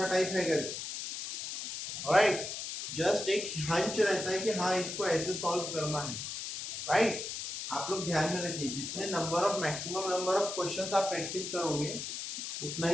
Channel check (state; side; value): noise; left; hiss, 6 dB below the sound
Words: टाइप है करके, राइट, जस्ट एक हंच रहता है कि हाँ इसको ऐसे सॉल्व करना है, राइट. आप लोग ध्यान में रखिए, जितने number of maximum number of questions आप प्रैक्टिस करोगे उतना